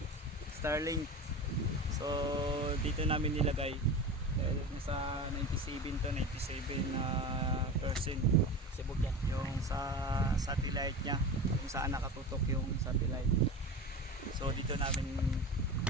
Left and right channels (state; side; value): normal; both; correlation 0.29